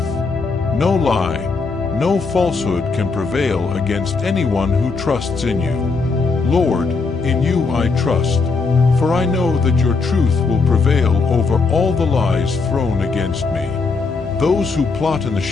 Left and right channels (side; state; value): right; quieter; 4.3 dB